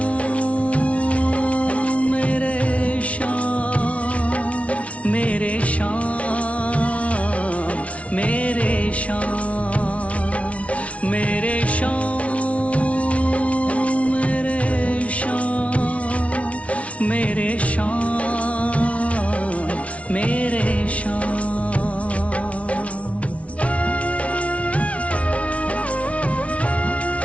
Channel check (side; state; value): right; late; 0.064 ms